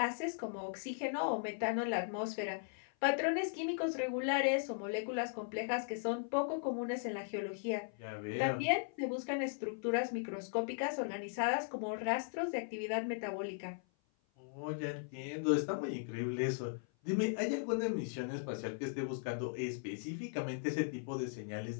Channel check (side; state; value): right; silent; 52 dB below the other